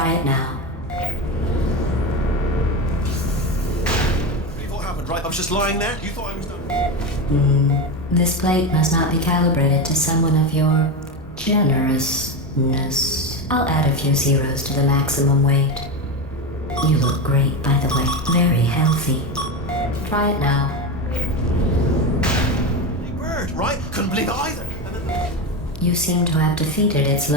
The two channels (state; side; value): normal; both; correlation 0.17